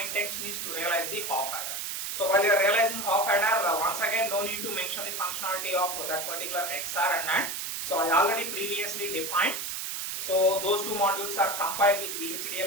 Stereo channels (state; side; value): noise; right; hiss, 4 dB below the sound